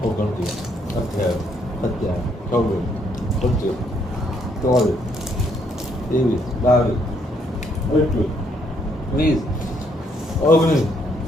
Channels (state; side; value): normal; both; correlation 0.71